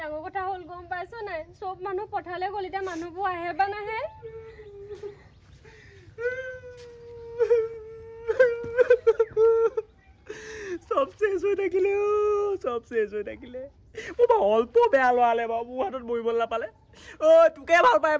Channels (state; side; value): identical; both; correlation 1.00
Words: কথা হল গম পাইছো নাই সব মানুহ পঠালে গলিটা মানুহবো আহে বা নাহে সব শেষ হৈ থাকিলে ও অল্প বেয়া লৱালে বাবু হাতত বইবল না পালে ও তোকে ভাল পায়